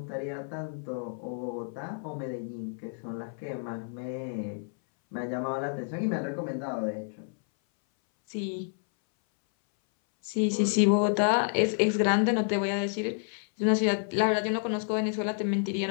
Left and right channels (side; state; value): right; silent; 58 dB below the other